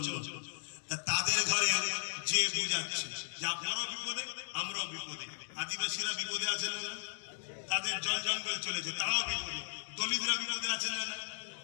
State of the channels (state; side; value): silent; right; digital silence